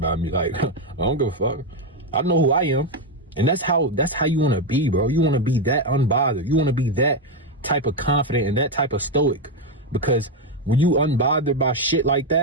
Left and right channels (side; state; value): both; normal; correlation 0.06